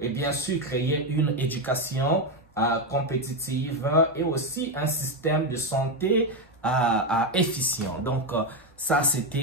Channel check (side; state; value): both; normal; correlation 0.08